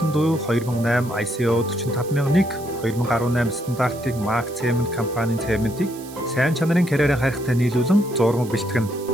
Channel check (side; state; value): right; noise; hiss, 18 dB below the sound